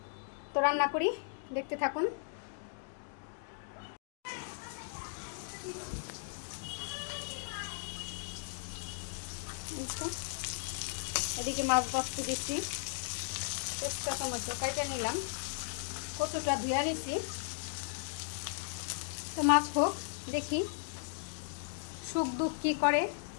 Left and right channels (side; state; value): right; silent; digital silence